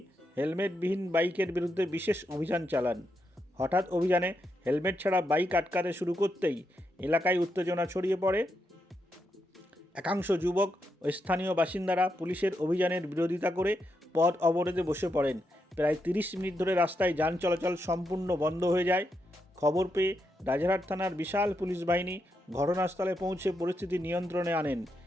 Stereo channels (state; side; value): normal; both; correlation 0.83